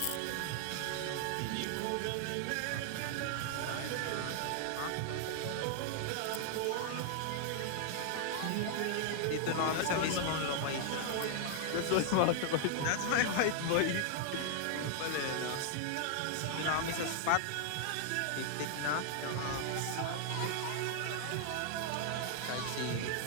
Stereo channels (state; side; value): different; both; correlation 0.00